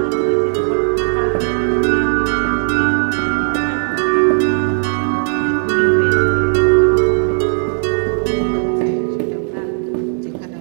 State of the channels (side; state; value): left; silent; 61 dB below the other